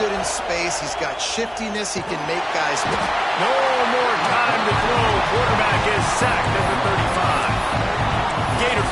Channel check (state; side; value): identical; both; correlation 1.00